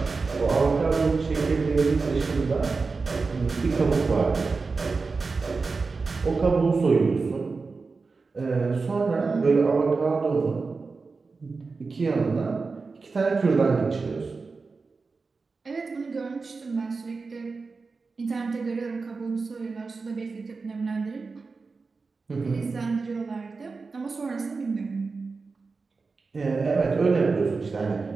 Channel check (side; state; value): left; quieter; 4.3 dB